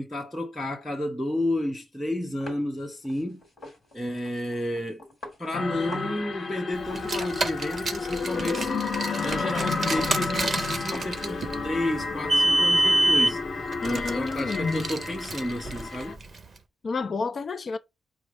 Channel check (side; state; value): both; normal; correlation 0.91